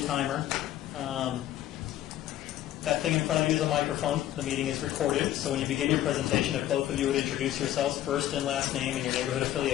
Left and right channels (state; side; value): quieter; right; 13.0 dB